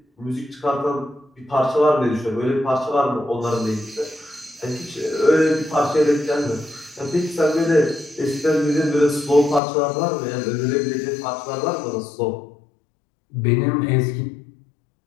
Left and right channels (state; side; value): drops out; right; at 9.6 s